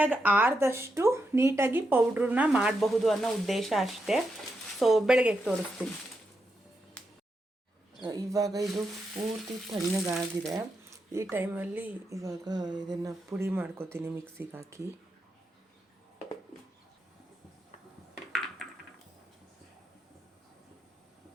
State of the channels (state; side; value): normal; both; correlation 0.84